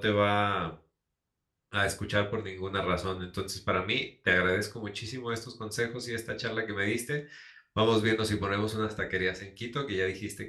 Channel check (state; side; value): identical; both; correlation 1.00